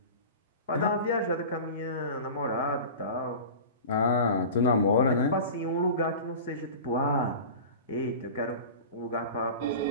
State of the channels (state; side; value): inverted; both; correlation -0.34